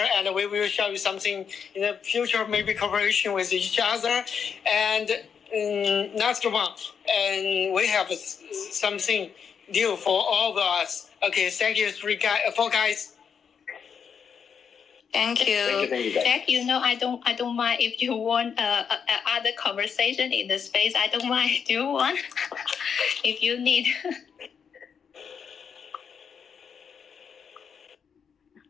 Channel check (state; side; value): quieter; right; 6.9 dB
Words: and we will show you something in the future, maybe cooperation with each other. And next one, and we have something new for all of us. Okay, thank you, four guys. Thank you. Thank you, guys. Jack, I don't mind if you want other conversation in the space. I don't mind. Do you want? If you need.